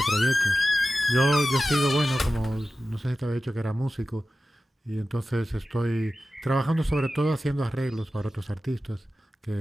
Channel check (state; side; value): normal; both; correlation 0.94